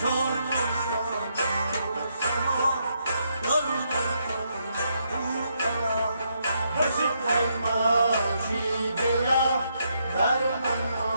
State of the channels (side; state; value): both; inverted; correlation -0.77